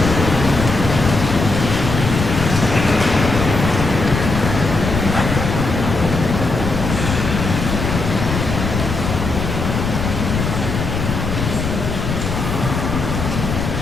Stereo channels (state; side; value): noise; left; rumble, 3 dB below the sound